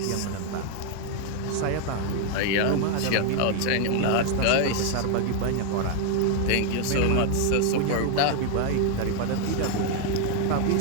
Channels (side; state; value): both; different; correlation 0.00